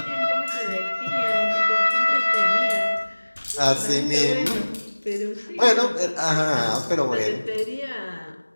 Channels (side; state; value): both; inverted; correlation -1.00